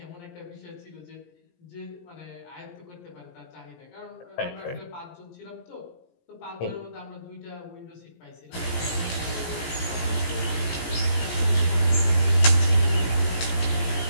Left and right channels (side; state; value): right; late; 17 ms